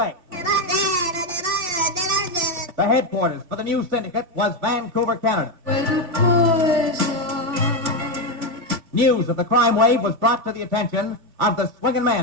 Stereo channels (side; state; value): left; late; 2.9 ms